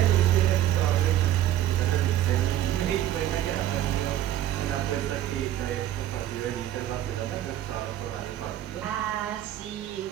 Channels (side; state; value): left; quieter; 12.4 dB